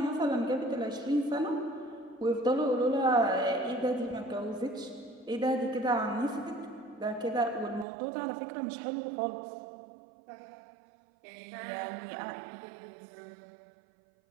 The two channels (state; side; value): drops out; left; at 7.9 s